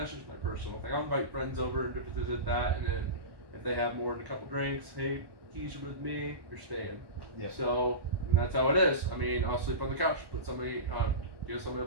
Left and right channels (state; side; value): late; left; 1.1 ms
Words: just my personal thing. I'll invite friends over and different things like that, and then if they have more than a couple drinks, hey, keys are with me, you're staying. Yep. So and that's how it is. I mean, I'll sleep on the couch, give somebody a